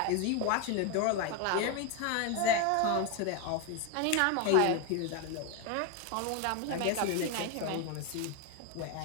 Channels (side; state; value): both; different; correlation 0.02